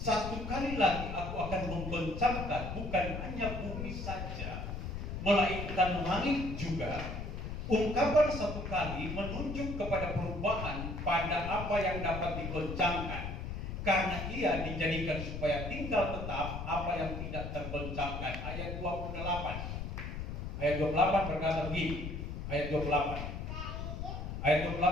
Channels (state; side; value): noise; left; rumble, 5 dB below the sound